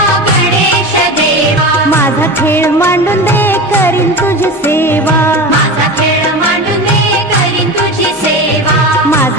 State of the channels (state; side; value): normal; both; correlation 0.27